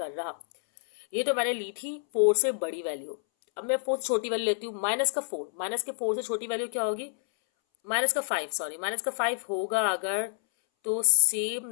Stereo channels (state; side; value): silent; right; 59 dB below the other